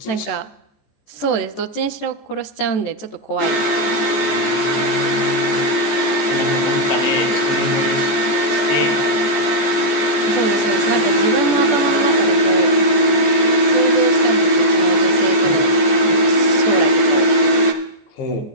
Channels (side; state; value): right; late; 14 ms